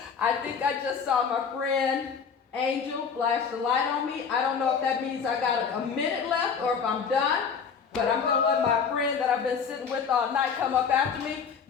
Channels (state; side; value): quieter; right; 6.3 dB